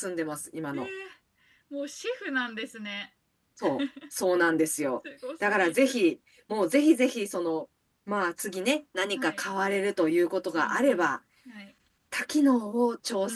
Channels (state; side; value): identical; both; correlation 1.00